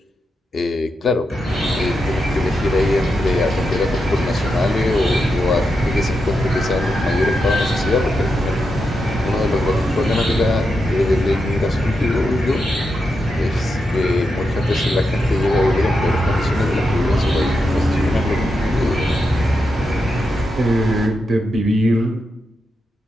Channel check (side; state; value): both; normal; correlation 0.86